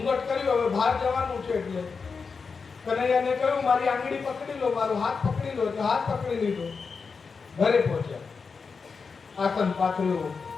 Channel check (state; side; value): quieter; right; 5.1 dB